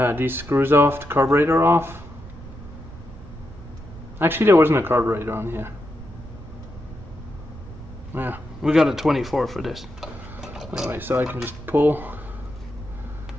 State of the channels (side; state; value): right; noise; rumble, 15 dB below the sound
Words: these screws off, the carburetor off. Actually, there wasn't a carburetor on here. Yeah, we got a 24 for this. Anyway, so I can just pull